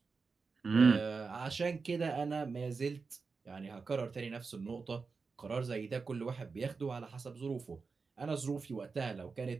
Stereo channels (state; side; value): quieter; left; 4.7 dB